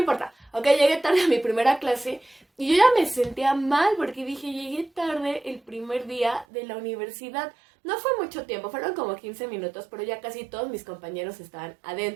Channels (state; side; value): drops out; left; at 6.5 s